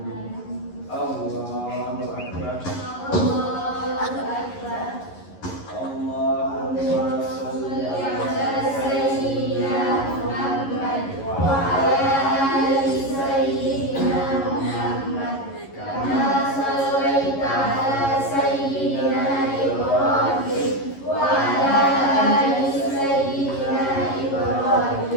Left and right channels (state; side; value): late; right; 11 ms